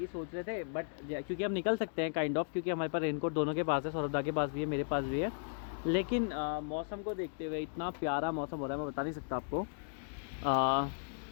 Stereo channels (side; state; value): right; silent; digital silence